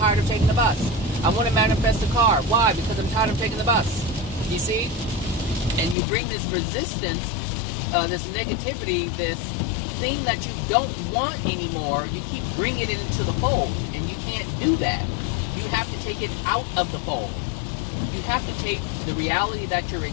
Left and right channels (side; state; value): right; drops out; at 6.0 s